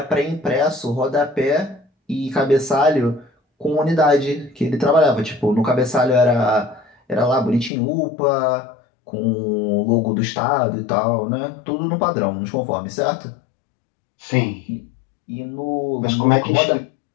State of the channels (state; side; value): drops out; right; at 7.7 s